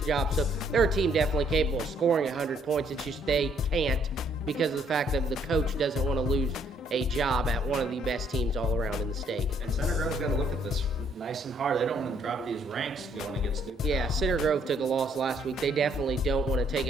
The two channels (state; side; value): normal; both; correlation 0.67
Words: job. So they're a team definitely capable of scoring 100 points. It's just they can't because of the fact that the coach doesn't want to lose a job at one of the best teams all around in the state. And Center Grove's got to look at this nice and hard. They don't want to drop these ranks going against New Pal. Yeah, Center Grove took a loss last week. They definitely don't want to take